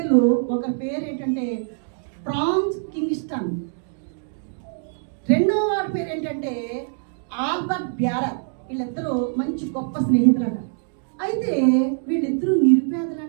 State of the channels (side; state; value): left; silent; digital silence